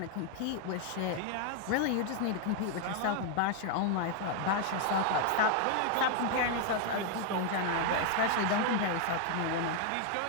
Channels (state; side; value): different; both; correlation 0.00